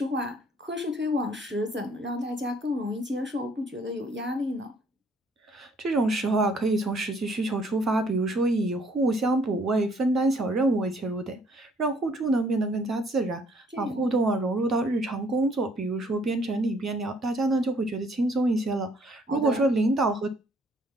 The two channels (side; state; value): both; normal; correlation 0.63